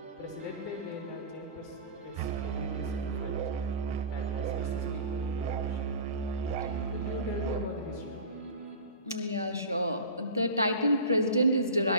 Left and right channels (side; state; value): both; inverted; correlation -0.36